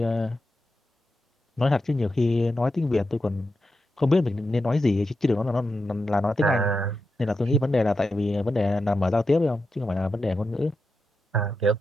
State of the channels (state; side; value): normal; both; correlation 0.88